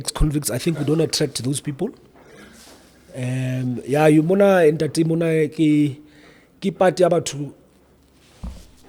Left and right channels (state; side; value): identical; both; correlation 1.00